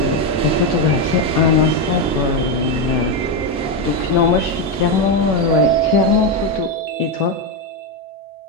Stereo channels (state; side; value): normal; both; correlation 0.08